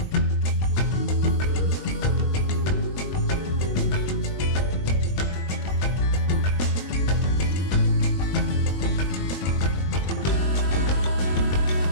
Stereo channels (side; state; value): right; late; 21 ms